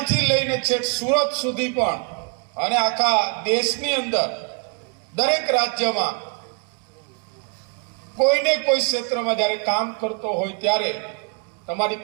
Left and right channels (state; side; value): quieter; left; 35.8 dB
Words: લઈને છેક સુરત સુધી પણ અને આખા દેશની અંદર દરેક રાજ્યમાં કોઈને કોઈ ક્ષેત્રમાં જ્યારે કામ કરતો હોય ત્યારે